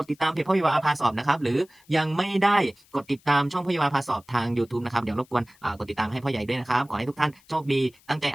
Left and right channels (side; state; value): left; noise; hiss, 30 dB below the sound